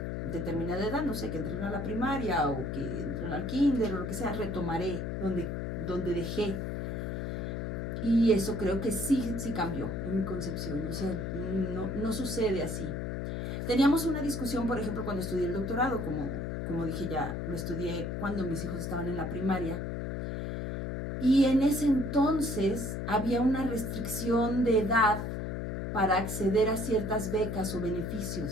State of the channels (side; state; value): left; noise; hum, 3 dB below the sound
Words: determinada edad, no sé, que entren a la primaria o que entren al kinder o lo que sea, retomaré donde donde dejé. Y eso creo que sí cambió en mi concepción, o sea, no sucede así. Teníamos una discusión, por ejemplo, cuando estudié el doctorado, como dije ya, lo estudié cuando mis hijos estaban en la primaria, y en ese entonces había una restricción de edad para acceder a ciertas becas o